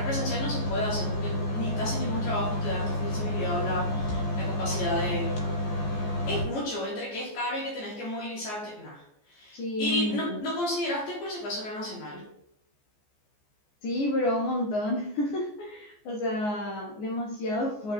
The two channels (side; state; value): right; late; 14 ms